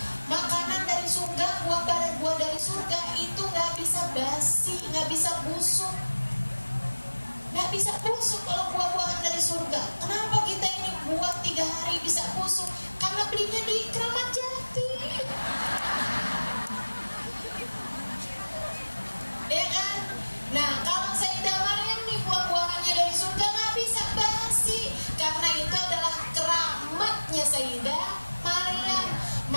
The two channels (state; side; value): inverted; both; correlation -1.00